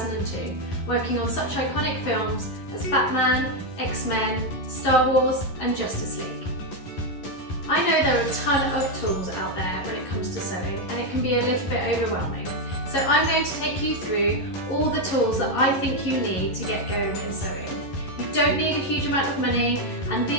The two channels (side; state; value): right; late; 11 ms